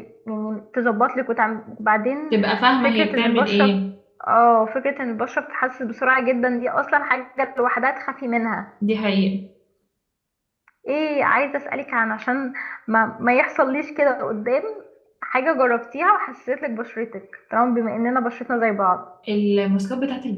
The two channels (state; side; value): identical; both; correlation 1.00